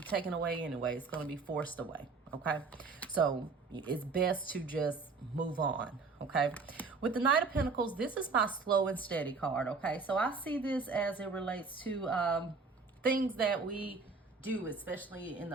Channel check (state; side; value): quieter; left; 4.3 dB